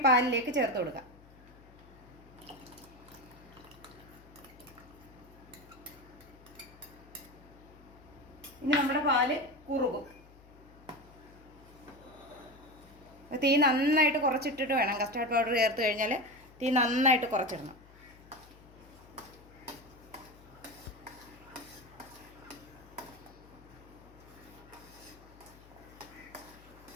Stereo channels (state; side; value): noise; left; hum, 23 dB below the sound